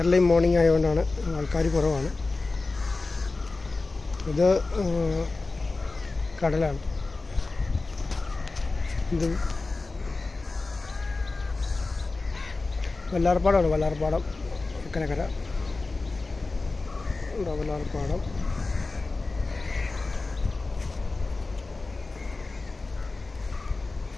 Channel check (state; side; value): quieter; right; 3.5 dB